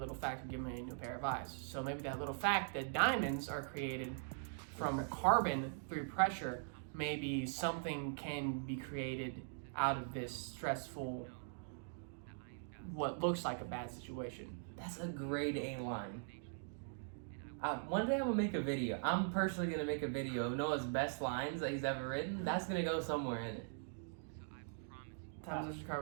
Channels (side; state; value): left; silent; digital silence